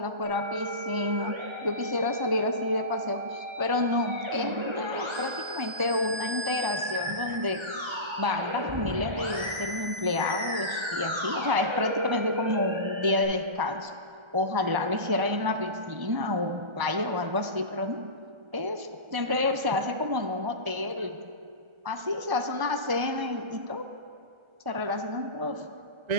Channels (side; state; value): left; late; 1.3 ms